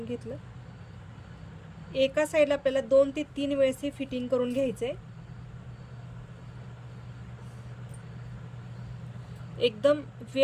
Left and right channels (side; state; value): both; identical; correlation 1.00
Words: घेतलं। एका साइडला आपल्याला 2 ते 3 वेळेस हे फिटिंग करून घ्यायचंय। एकदम